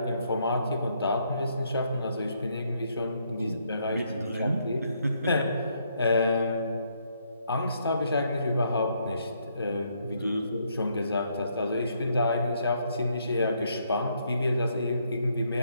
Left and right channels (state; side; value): inverted; both; correlation -0.73